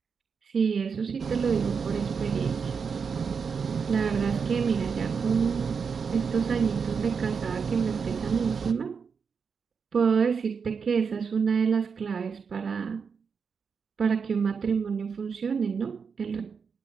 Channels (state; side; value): quieter; left; 5.9 dB